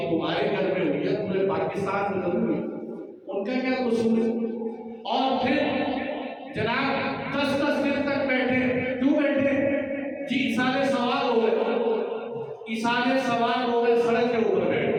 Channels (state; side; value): identical; both; correlation 1.00